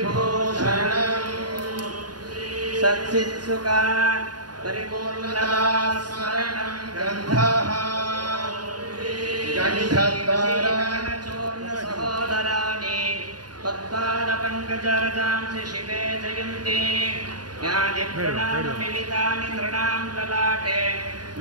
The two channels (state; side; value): late; left; 0.70 ms